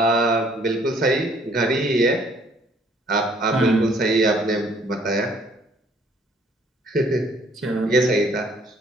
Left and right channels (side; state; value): both; normal; correlation 0.61